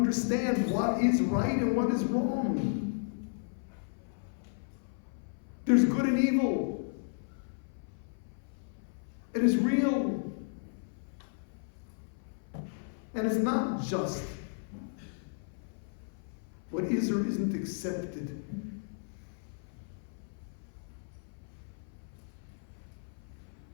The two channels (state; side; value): silent; right; 55 dB below the other